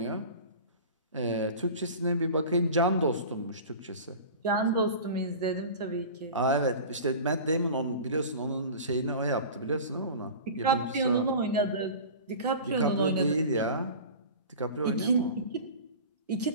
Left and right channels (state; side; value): inverted; both; correlation -0.36